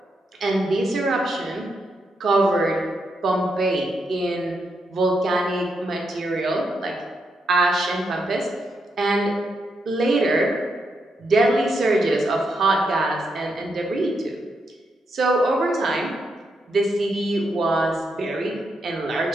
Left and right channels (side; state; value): both; normal; correlation 0.81